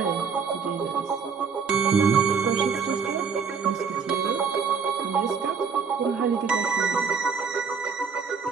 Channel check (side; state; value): left; quieter; 5.8 dB